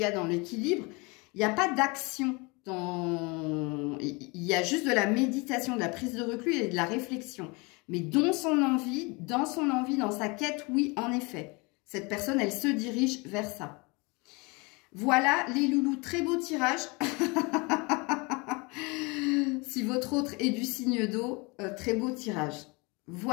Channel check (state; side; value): quieter; right; 27.9 dB